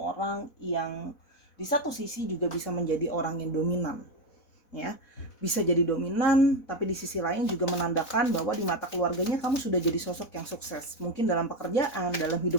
yang di satu sisi juga bisa menjadi orang yang dominan ya. Bisa jadi dominan, tapi di sisi lain juga menandakan bahwa di mata keluarganya kamu sudah jadi sosok yang sukses. Mungkin dalam pekerjaan, dalam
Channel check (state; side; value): late; right; 4.1 ms